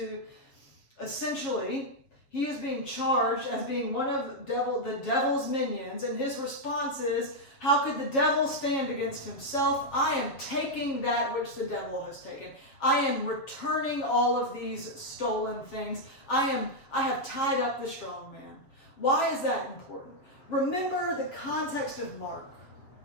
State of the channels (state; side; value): late; right; 7.5 ms